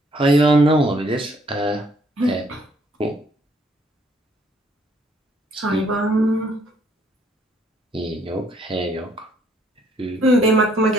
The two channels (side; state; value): both; normal; correlation 0.66